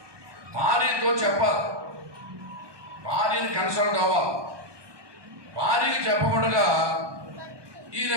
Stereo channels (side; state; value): left; late; 1.2 ms